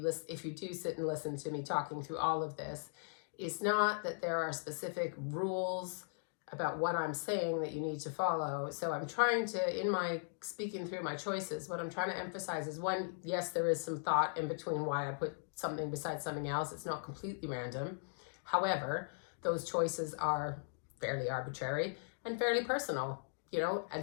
if you do sit and listen to me talking through all of this, is not that there are specific rules about what I'm saying that you need to follow. So I'm trying to, in my speaking through my choices, what I'm trying to emphasize is, one, yes, there is some thought in between why I put something beside something else. It's not completely random. However, those choices are fairly arbitrary and fairly personal.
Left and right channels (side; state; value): right; silent; digital silence